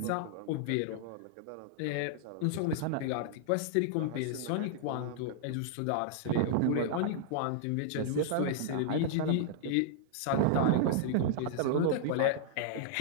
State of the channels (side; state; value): both; different; correlation -0.01